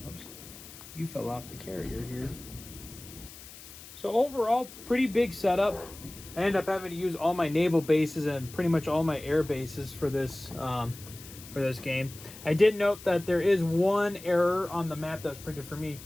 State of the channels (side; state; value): left; noise; hiss, 17 dB below the sound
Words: Oops, you fell off the carrier here. So overall, pretty big setup. I ended up having to use all my naval bases and pretty much all my air bases for this game. I did note that there is one error on the map that was printed for me.